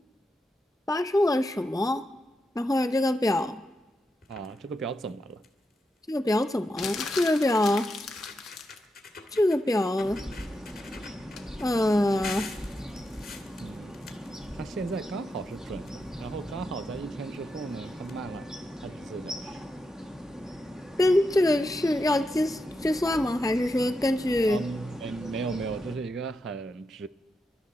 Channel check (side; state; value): both; normal; correlation 0.86